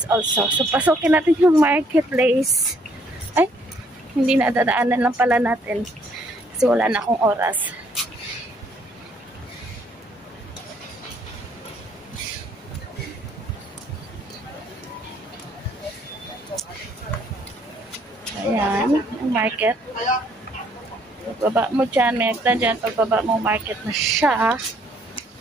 also. So, pasukin natin yung marketplace. Ay, hindi na dadaanan lang pala natin. Kasi wala na akong oras. Ayan, ang market. Pagbaba mo dyan, may agtan dyan. Pagbaba mo, market na siya.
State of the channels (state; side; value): normal; both; correlation 0.65